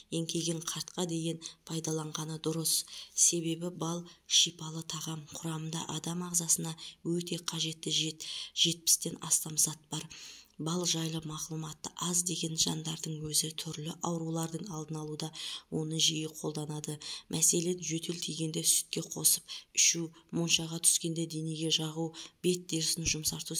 еңкейген қартқа дейін пайдаланғаны дұрыс. Себебі бал шипалы тағам. Құрамында адам ағзасына өте қажетті 70-тен астам зат бар. Бал жайлы мағлұматы аз деген жандардың өзі түрлі аурулардың алдын алуда оны жиі қолданады. Мәселен, жөтел тигенде сүтке қосып ішу, моншаға түскенде денеге жағу, бет терісін жұмсарту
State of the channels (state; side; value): identical; both; correlation 1.00